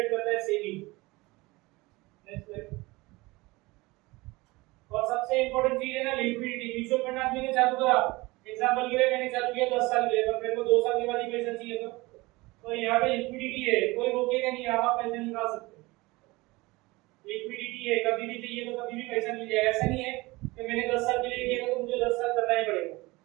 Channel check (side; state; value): left; quieter; 22.1 dB